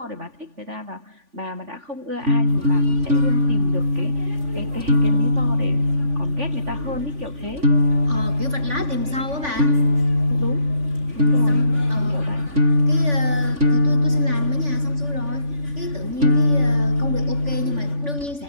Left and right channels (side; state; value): left; late; 3.5 ms